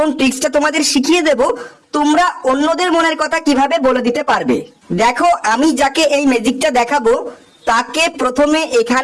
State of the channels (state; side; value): identical; both; correlation 1.00